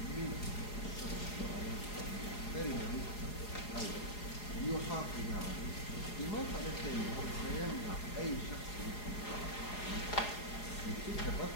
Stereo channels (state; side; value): late; right; 4.8 ms